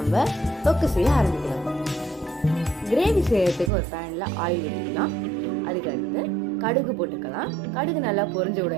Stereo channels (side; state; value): left; drops out; at 3.7 s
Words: தொக்கு செய்ய ஆரம்பிக்கலாம். கிரேவி செய்யறதுக்கு ஒரு பேன்ல ஆயில் ஊற்றிக்கலாம். அதுக்கு அடுத்து கடுகு போட்டுக்கலாம். கடுகு நல்லா பொரிஞ்ச